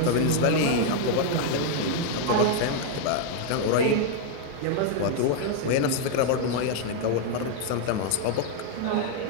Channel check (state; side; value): different; both; correlation 0.00